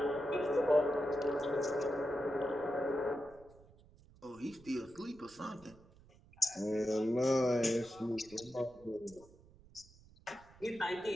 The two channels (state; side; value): noise; right; rumble, 25 dB below the sound